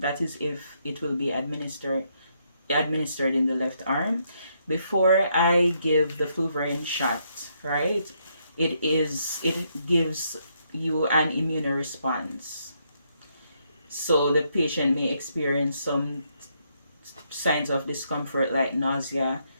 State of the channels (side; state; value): both; inverted; correlation -0.75